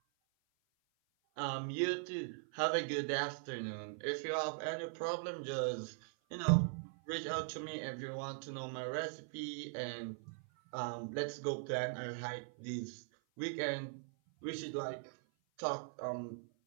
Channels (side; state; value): left; silent; 51 dB below the other